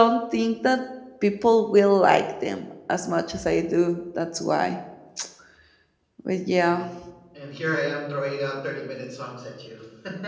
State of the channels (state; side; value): identical; both; correlation 1.00